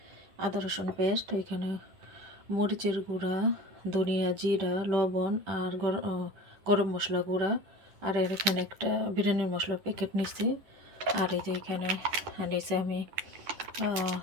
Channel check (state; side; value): late; left; 10 ms